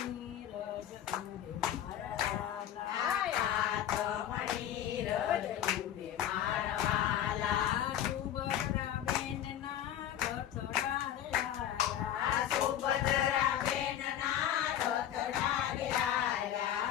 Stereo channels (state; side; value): quieter; right; 10.9 dB